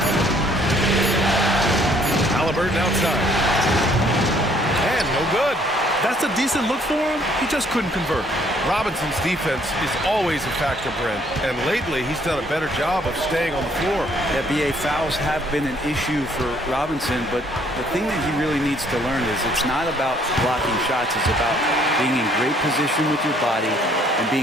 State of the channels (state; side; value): normal; both; correlation 0.63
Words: Haliburton outside. And no good. That's a decent look for him. He just couldn't convert. Robinson's defense is always a factor, Brent, and lately he's done a better job of staying on the floor. Yeah, BA, fouls have been an issue for Robinson, but the thing that he really needs to learn is it's not about blocking shots, it's about being in great position with your body and